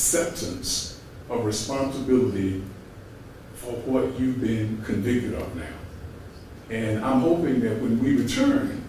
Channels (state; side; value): identical; both; correlation 1.00